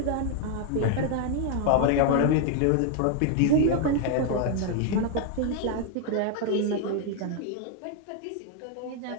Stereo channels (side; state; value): both; different; correlation 0.00